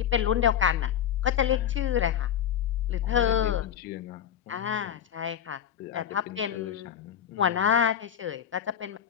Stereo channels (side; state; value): right; quieter; 9.3 dB